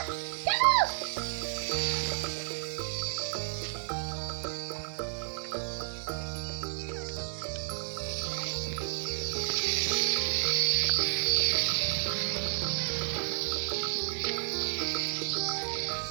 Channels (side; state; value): left; silent; 57 dB below the other